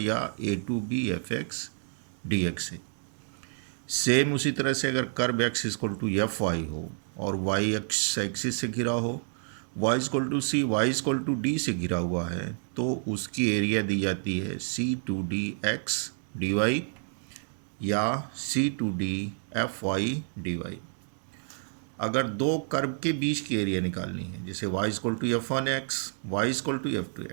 A to B F x D X से। सेम उसी तरह से अगर curve X equal to F Y हो और वाई एक्स एक्सिस से घिरा हो, Y equal to C, Y equal to D से घिरा हुआ है, तो उसकी एरिया दी जाती है C to D X D Y या C to D F Y D Y. अगर दो कर्व के बीच की एरिया निकालनी है, जैसे y equal to f one x, y equal to f two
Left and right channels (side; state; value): left; silent; digital silence